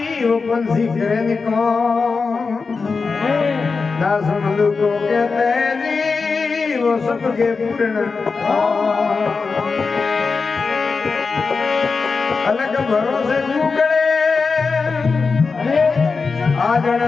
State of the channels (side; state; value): right; quieter; 4.6 dB